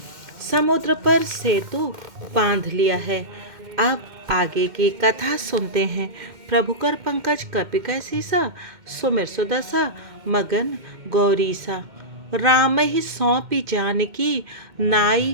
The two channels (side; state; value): left; late; 2.1 ms